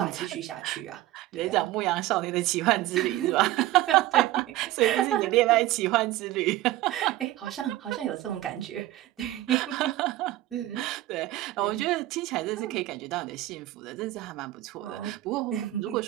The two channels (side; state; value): left; quieter; 15.9 dB